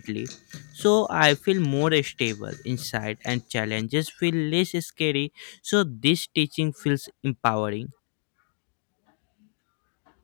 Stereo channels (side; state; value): right; silent; digital silence